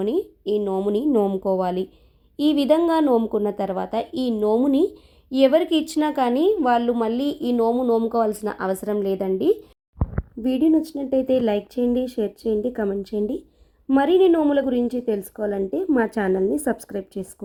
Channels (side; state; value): both; identical; correlation 1.00